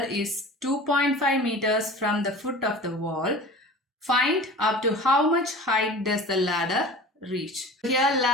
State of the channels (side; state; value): both; normal; correlation 0.38